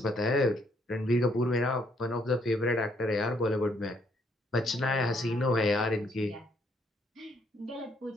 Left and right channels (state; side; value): normal; both; correlation 0.70